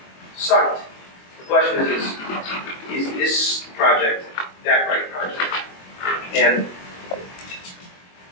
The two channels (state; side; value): late; right; 22 ms